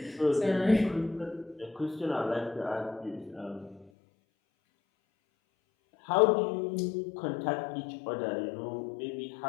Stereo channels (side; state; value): right; drops out; at 3.9 s